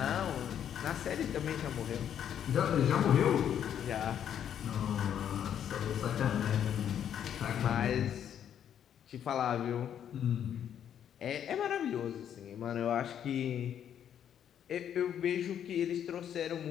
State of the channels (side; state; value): right; quieter; 9.4 dB